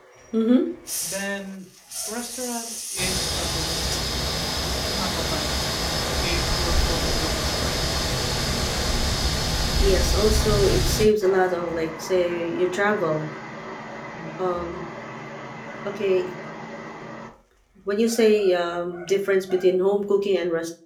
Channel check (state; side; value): identical; both; correlation 1.00